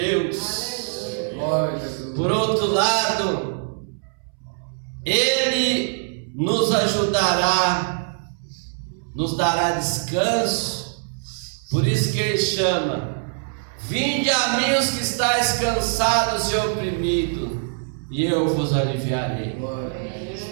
Por outro lado, Ele nos ajudará, nos dará descanso. Por isso que Ele chama: vinde a mim os que estáis cansados e oprimidos, e eu vos aliviarei.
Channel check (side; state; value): left; silent; 63 dB below the other